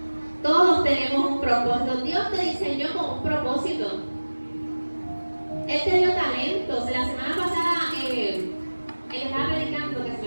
Todos tenemos un propósito. Dios te diseñó con un propósito. Él te dio talentos. La semana pasada, él estaba predicando, que se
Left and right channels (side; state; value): both; inverted; correlation -1.00